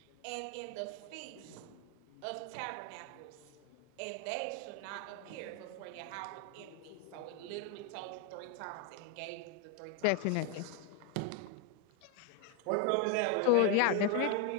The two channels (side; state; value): both; different; correlation 0.01